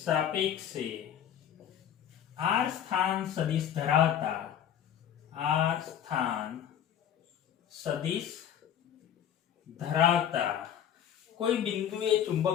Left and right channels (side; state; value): right; quieter; 9.6 dB